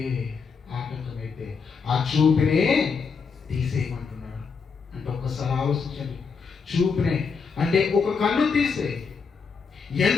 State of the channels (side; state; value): right; quieter; 5.4 dB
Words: ఆ చూపునే తీసేయమంటున్నాడు. అంటే ఒక్కసారి ఆలోచించండి, చూపునే అంటే ఒక కన్ను తీసే.